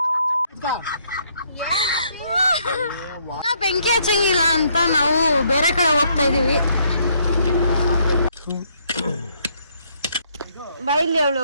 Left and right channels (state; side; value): inverted; both; correlation -0.70